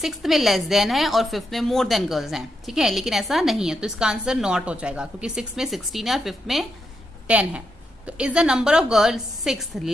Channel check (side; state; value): both; normal; correlation 0.82